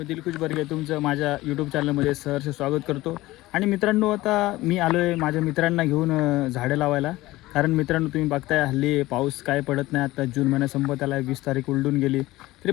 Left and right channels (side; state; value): right; quieter; 18.2 dB